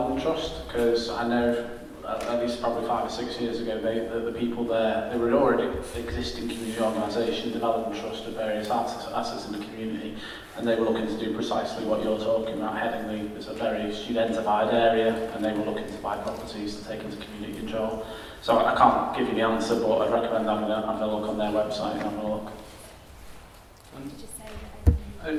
Trust, because I know at least probably 5 or 6 years ago, the people there, they were already existing community organisation, development trust of various assets in the community, and they were looking to do precisely what you're talking about. Headingley is a very studentified area, and they were looking to buy properties to take into community control. So I can't give you the answer, but I'd recommend having a look on their website and having a look.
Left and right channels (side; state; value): both; identical; correlation 1.00